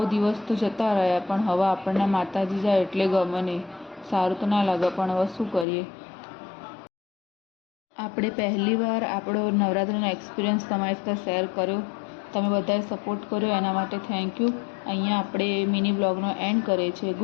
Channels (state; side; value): drops out; right; at 5.7 s